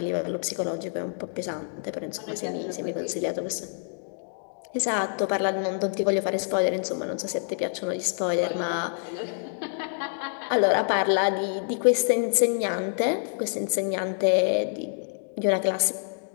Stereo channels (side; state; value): right; silent; digital silence